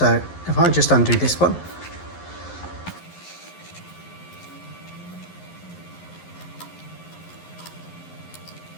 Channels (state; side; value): late; right; 11 ms